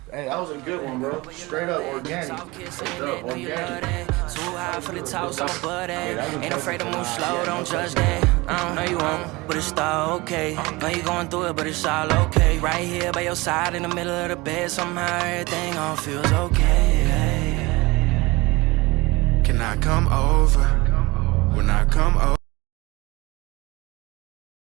Hey, that was a good one, bro. Straight up organic. Organic. Too high for the talk, so I'm buddy. Ain't afraid to move slow, don't judge that. I don't know you won't, but it's all okay. Know you going through it, but it's all okay. Right here by your side in the middle of the bed, somehow everything all feels okay. Can I come over? When I come over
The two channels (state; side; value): quieter; left; 22.7 dB